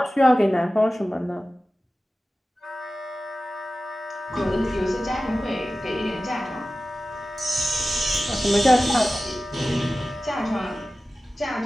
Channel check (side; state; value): both; normal; correlation 0.95